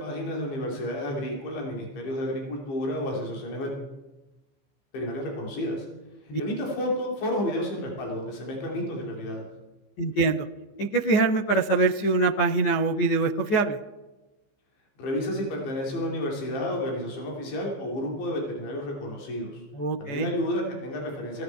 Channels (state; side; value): late; right; 15 ms